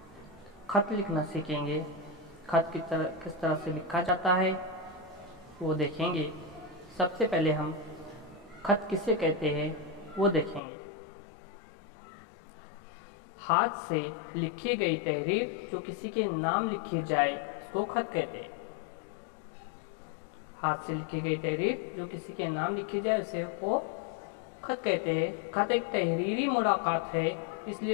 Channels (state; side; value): drops out; right; at 10.6 s